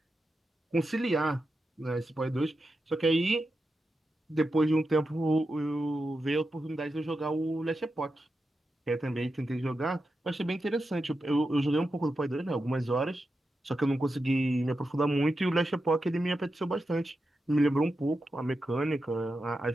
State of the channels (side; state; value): both; normal; correlation 0.89